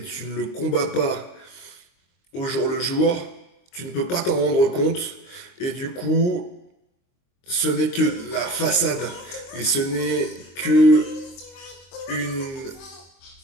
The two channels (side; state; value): right; late; 23 ms